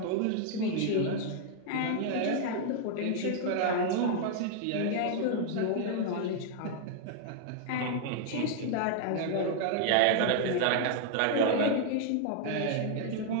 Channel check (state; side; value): different; both; correlation -0.01